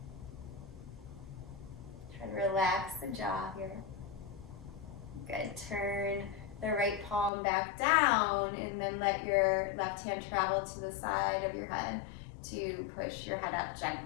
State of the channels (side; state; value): right; drops out; at 7.3 s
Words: Try to relax the jaw here. Good. Turn the right palm back down and then let your left hand travel to the side of your head to push your head up